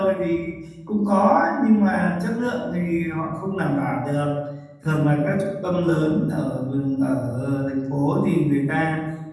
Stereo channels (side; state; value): both; identical; correlation 1.00